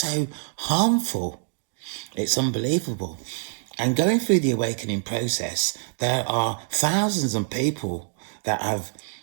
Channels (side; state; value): left; silent; digital silence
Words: harmful. It's unbelievable. And going through the awakening process, there are thousands of people that have